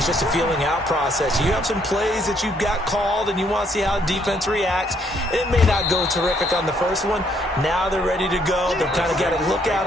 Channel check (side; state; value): both; normal; correlation 0.69